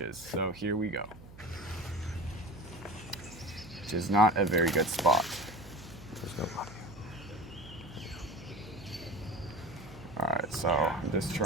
So here we go. Which is not a very good spot. There's nobody. Alright, so I'm just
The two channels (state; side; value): noise; right; hum, 18 dB below the sound